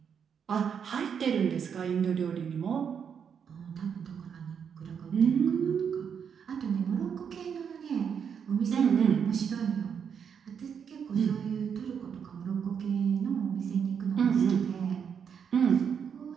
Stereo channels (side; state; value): left; quieter; 7.3 dB